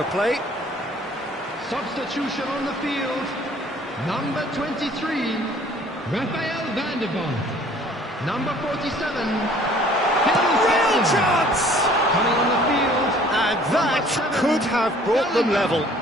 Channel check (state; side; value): normal; both; correlation 0.54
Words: play. Substitution on the field. Number 23, Rafael van der Vaart. Number 47, Real chance! coming on the field. And that could have brought them level.